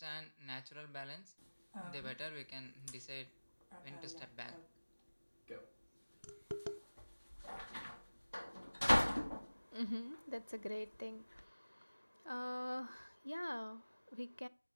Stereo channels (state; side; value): inverted; both; correlation -1.00